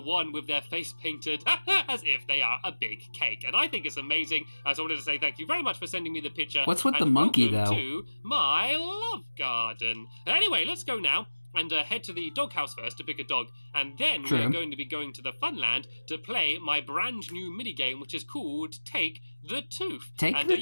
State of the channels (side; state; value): both; inverted; correlation -1.00